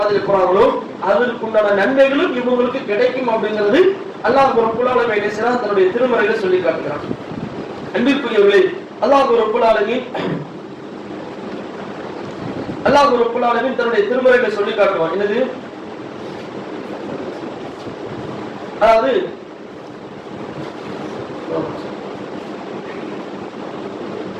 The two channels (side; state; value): both; identical; correlation 1.00